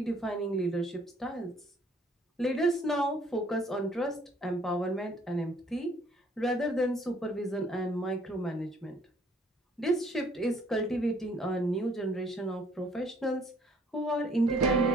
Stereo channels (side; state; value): both; normal; correlation 0.61